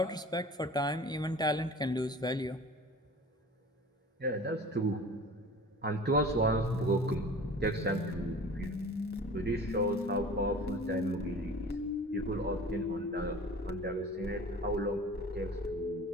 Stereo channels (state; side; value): normal; both; correlation 0.41